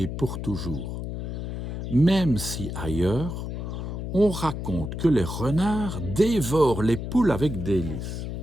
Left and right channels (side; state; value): left; noise; hum, 5 dB below the sound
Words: pour toujours. Même si ailleurs, on raconte que les renards dévorent les poules avec délice.